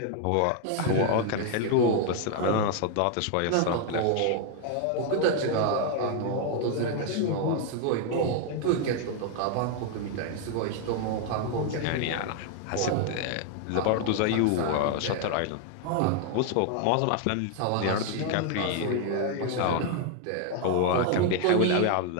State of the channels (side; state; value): both; different; correlation 0.00